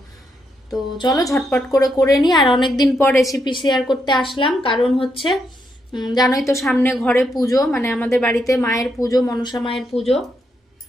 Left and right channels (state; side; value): normal; both; correlation 0.80